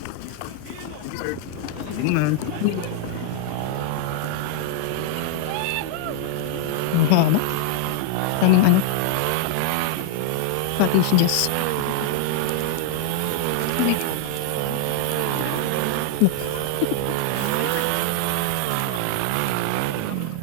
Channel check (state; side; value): different; both; correlation 0.00